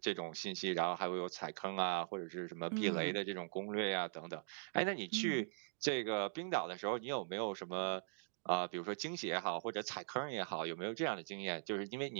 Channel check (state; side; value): silent; left; digital silence